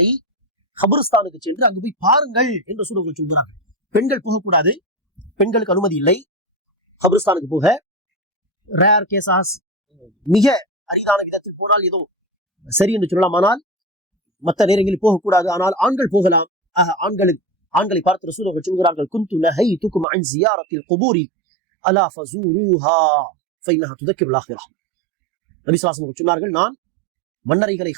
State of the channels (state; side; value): drops out; left; at 20.1 s